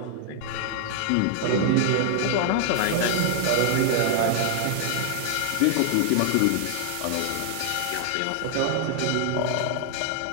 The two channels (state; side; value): different; both; correlation 0.00